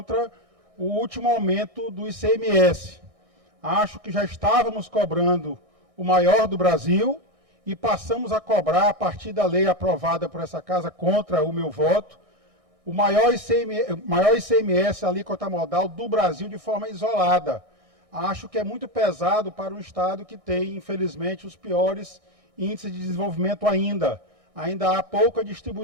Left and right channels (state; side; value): late; left; 1.6 ms